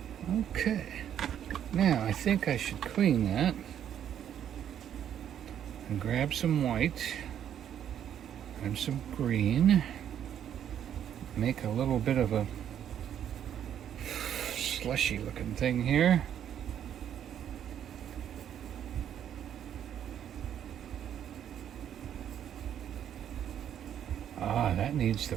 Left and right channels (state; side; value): quieter; left; 9.7 dB